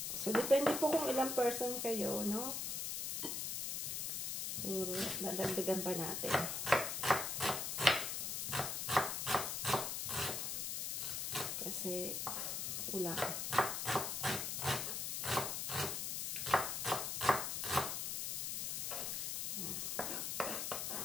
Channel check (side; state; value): left; noise; hiss, 1 dB below the sound